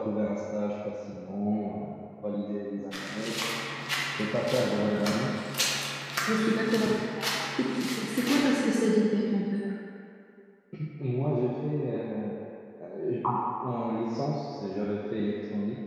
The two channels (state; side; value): identical; both; correlation 1.00